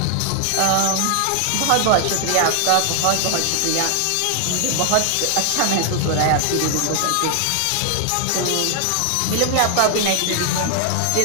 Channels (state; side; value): different; both; correlation 0.00